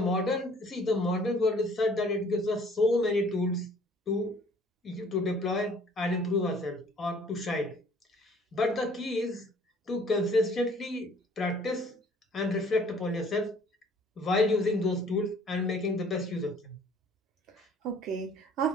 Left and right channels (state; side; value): normal; both; correlation 0.55